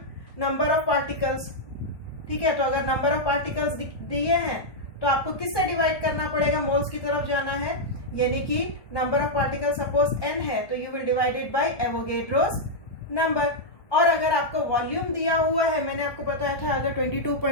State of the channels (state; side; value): late; right; 1.2 ms